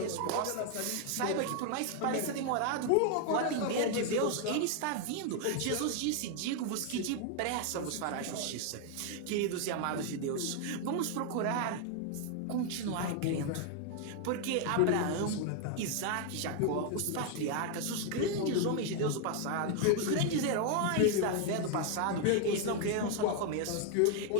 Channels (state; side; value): different; both; correlation 0.00